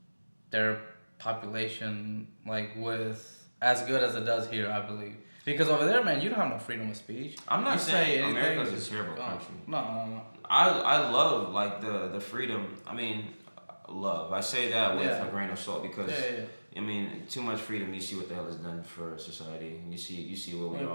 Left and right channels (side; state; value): both; inverted; correlation -1.00